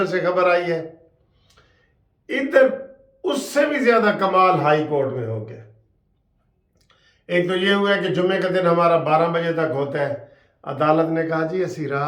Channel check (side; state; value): both; identical; correlation 1.00